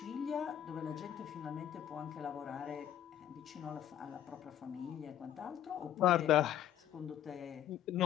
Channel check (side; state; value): right; quieter; 11.0 dB